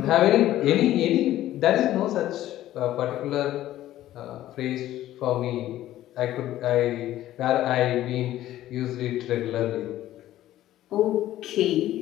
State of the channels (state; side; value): quieter; right; 13.8 dB